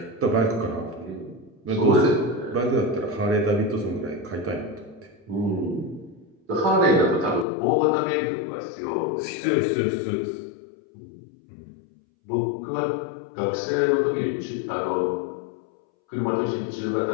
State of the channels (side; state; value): right; drops out; at 7.5 s